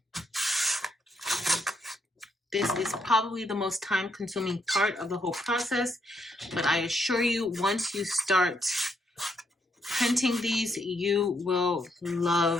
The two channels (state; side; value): normal; both; correlation 0.76